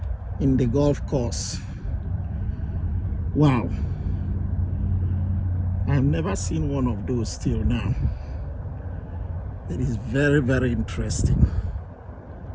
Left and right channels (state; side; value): identical; both; correlation 1.00